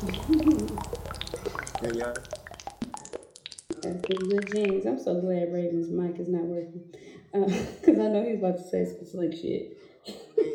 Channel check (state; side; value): identical; both; correlation 1.00